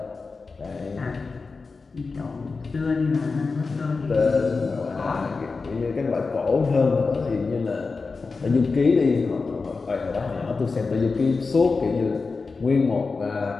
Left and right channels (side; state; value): right; quieter; 4.3 dB